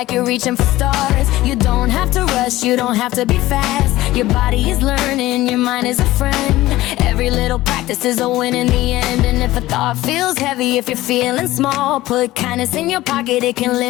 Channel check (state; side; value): quieter; right; 16.9 dB